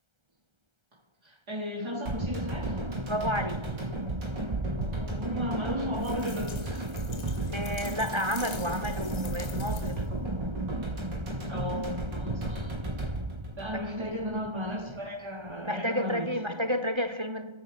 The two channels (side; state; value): left; late; 1.3 ms